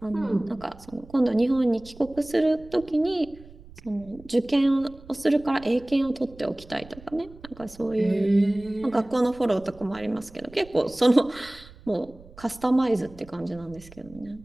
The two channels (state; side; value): noise; right; rumble, 21 dB below the sound